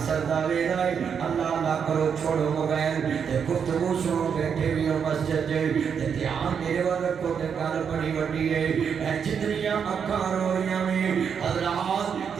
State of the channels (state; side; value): quieter; left; 7.0 dB